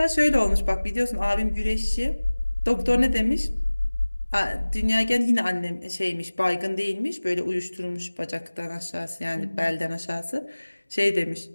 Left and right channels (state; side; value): inverted; both; correlation -1.00